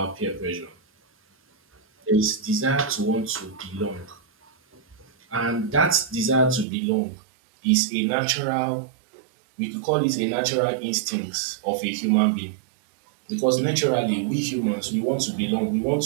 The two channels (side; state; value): left; drops out; at 6.7 s